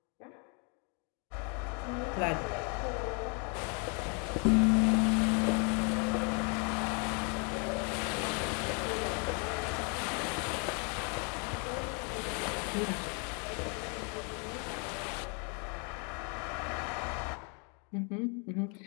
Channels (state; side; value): quieter; right; 36.5 dB